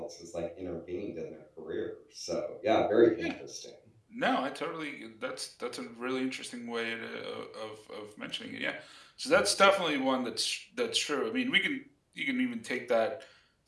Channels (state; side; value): identical; both; correlation 1.00